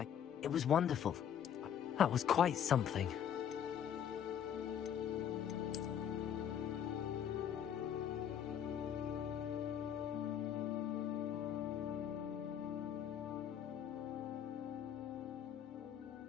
It was wonderful. That was quite something.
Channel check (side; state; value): right; quieter; 9.1 dB